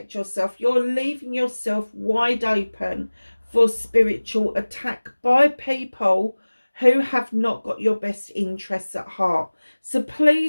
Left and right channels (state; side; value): inverted; both; correlation -1.00